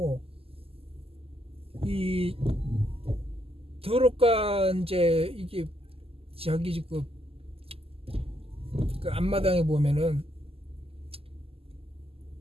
이 도로가 이제 이게 저기 그 앞마당에 보면은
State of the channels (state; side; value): late; left; 0.28 ms